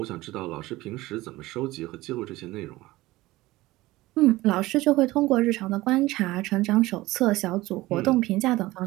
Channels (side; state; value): left; quieter; 18.6 dB